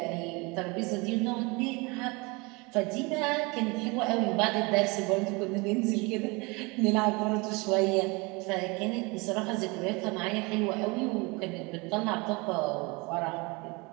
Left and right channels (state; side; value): quieter; left; 27.0 dB